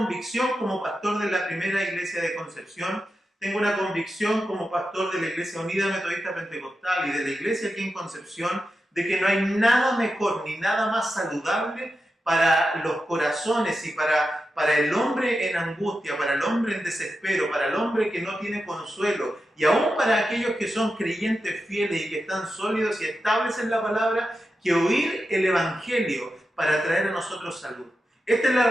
como pastor de la primera iglesia de Concepción, tengo una convicción como pastor de la Iglesia Unida Metodista Pentecostal y de la iglesia aquí en Concepción, de que no hay nada mejor ni nada más saludable para los corazones y para el hombre en angustia, para el hombre en desespero, para el hombre que no tiene consuelo y aún para aquellos que son creyentes fieles y que están sólidos y estables en la palabra, que oír el Evangelio para traer a nosotros salud. Esta es la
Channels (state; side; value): normal; both; correlation 0.90